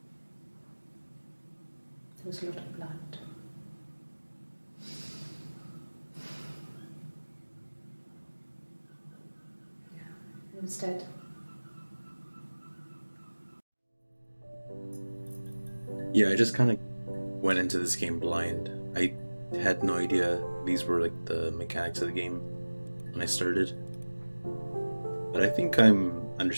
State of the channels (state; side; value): inverted; both; correlation -1.00